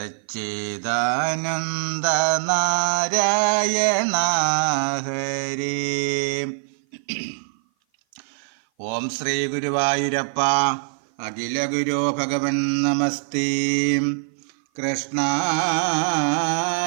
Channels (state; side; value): silent; left; 56 dB below the other